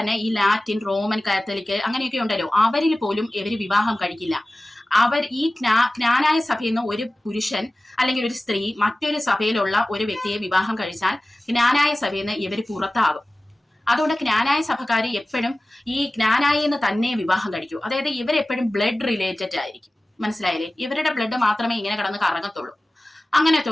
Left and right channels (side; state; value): both; normal; correlation 0.97